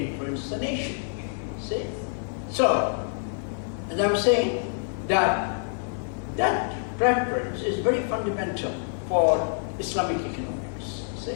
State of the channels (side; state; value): right; silent; digital silence